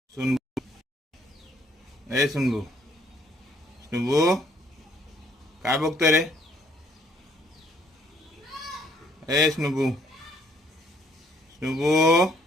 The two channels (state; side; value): normal; both; correlation 0.65